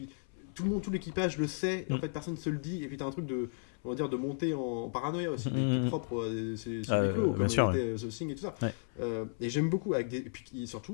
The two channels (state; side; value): silent; right; 55 dB below the other